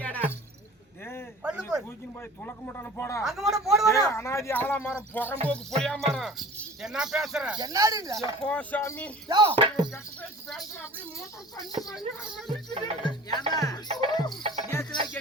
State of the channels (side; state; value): both; normal; correlation 0.43